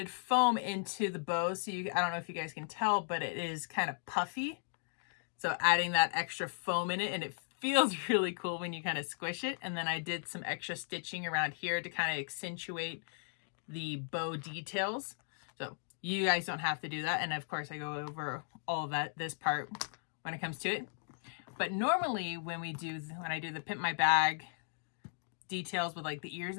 foam into the bow. So I don't know if you guys can tell, but it is kind of puffy. So adding that extra foam in it, and it feels really cool when you kind of squish it. And then I did some extra stitching around here to kind of accentuate the bow details. So you guys don't have to do that. And of course I go over all of that, this part when it comes to it. But normally when I do the Pimp My Bag details with like the ears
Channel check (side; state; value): right; silent; digital silence